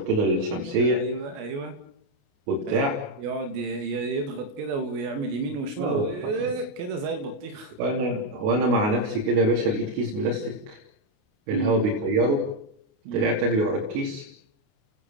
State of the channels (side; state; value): left; late; 29 ms